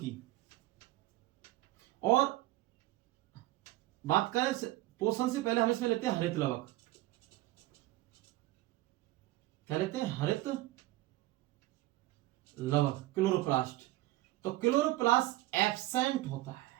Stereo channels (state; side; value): quieter; left; 17.3 dB